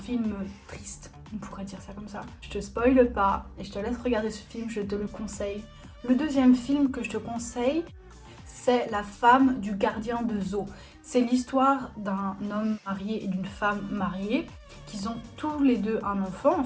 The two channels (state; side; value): identical; both; correlation 1.00